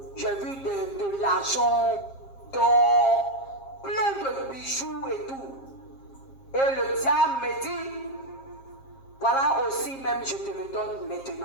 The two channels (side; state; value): right; late; 7.5 ms